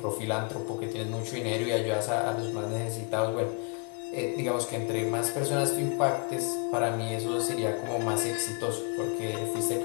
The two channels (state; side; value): quieter; right; 36.6 dB